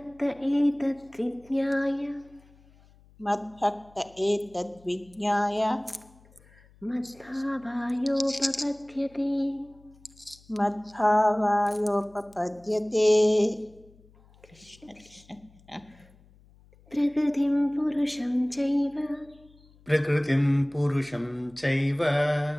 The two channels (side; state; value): left; noise; hum, 27 dB below the sound